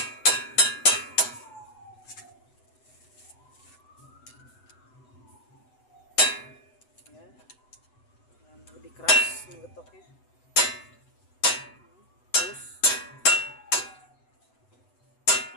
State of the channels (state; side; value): late; right; 8.0 ms